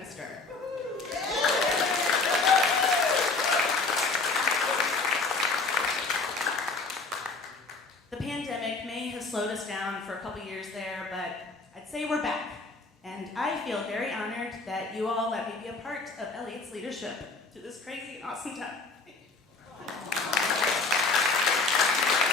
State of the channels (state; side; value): quieter; right; 3.8 dB